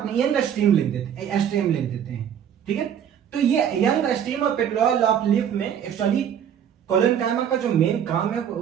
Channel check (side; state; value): left; quieter; 9.0 dB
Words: में यंग स्टेम लिख देते हैं, ठीक है। तो ये यंग स्टेम और पेट्यूल ऑफ लीफ में एक्चुअली कोलेनकाइमा का जो मेन काम है